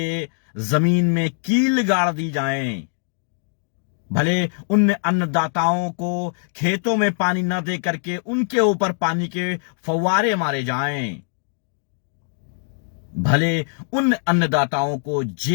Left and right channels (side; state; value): right; silent; 64 dB below the other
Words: जमीन में कील गाड़ दी जाए, भले उन अन्नदाताओं को खेतों में पानी न दे करके उनके ऊपर पानी के फव्वारे मारे जाएं, भले उन अन्नदाताओं को